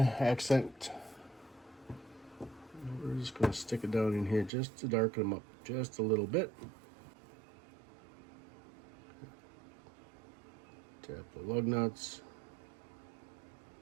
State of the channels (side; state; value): left; drops out; at 4.5 s